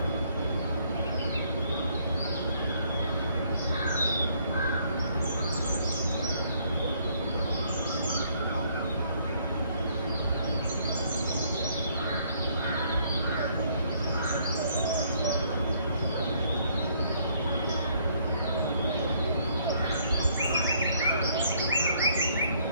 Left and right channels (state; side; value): inverted; both; correlation -0.67